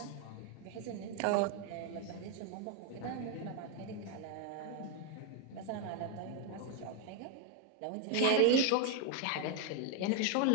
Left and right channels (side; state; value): both; different; correlation 0.01